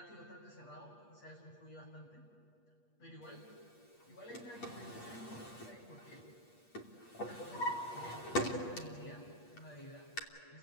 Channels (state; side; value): late; right; 8.4 ms